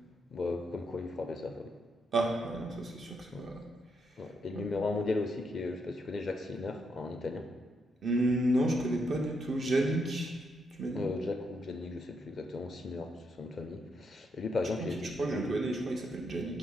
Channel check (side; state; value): both; normal; correlation 0.79